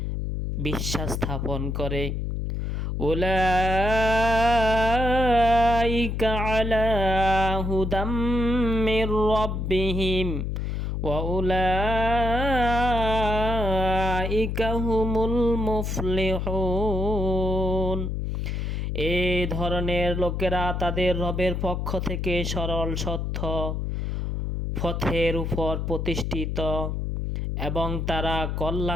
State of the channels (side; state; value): left; noise; hum, 2 dB below the sound